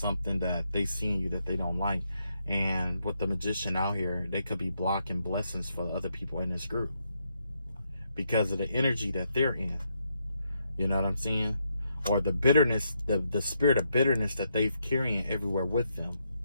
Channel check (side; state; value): both; inverted; correlation -0.79